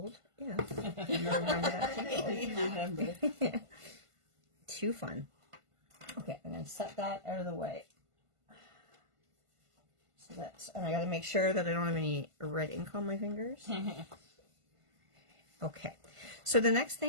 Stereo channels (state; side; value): late; left; 1.5 ms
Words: Yeah. You remember that too. Remember. Too fun. Okay, I'm going to set that out of the way. So that's, and I got to make sure that I don't have any red ink on my fingers. Okay, so the next